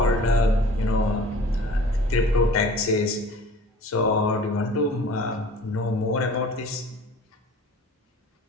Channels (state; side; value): normal; both; correlation 0.45